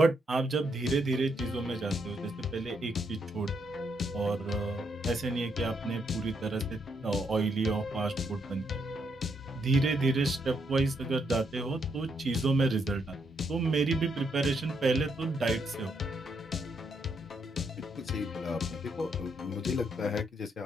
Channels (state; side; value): normal; both; correlation 0.76